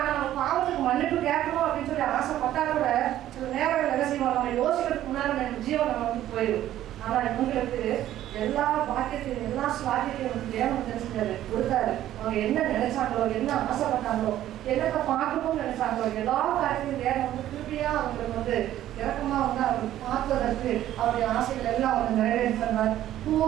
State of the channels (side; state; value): left; quieter; 12.8 dB